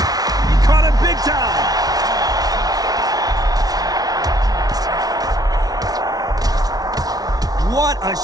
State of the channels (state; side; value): late; left; 0.19 ms